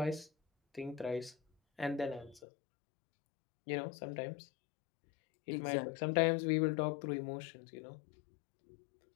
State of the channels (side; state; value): right; drops out; at 2.4 s